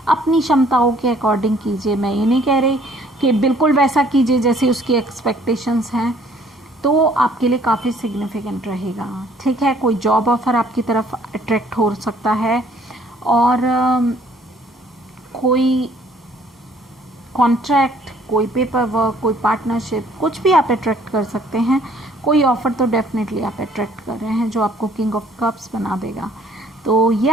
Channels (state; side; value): normal; both; correlation 0.60